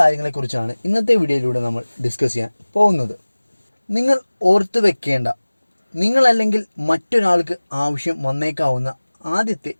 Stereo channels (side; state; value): both; inverted; correlation -1.00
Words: ഇന്നത്തെ വീഡിയോയിലൂടെ നമ്മൾ ഡിസ്കസ് ചെയ്യാൻ പോകുന്നത്. നിങ്ങൾ ഓർത്തു വെക്കേണ്ട, നിങ്ങളല്ലെങ്കിൽ മറ്റൊരാൾക്ക് ആവശ്യം വന്നേക്കാവുന്ന ആദ്യത്തെ